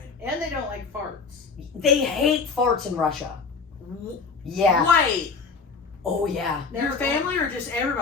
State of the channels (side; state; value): right; quieter; 4.9 dB